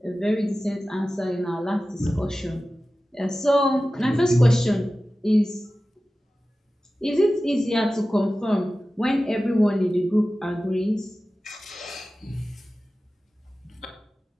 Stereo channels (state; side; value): normal; both; correlation 0.95